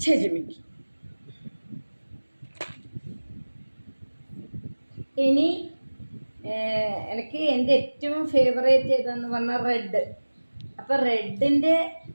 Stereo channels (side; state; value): both; inverted; correlation -1.00